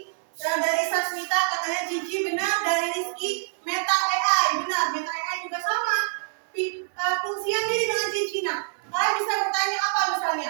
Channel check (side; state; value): left; silent; digital silence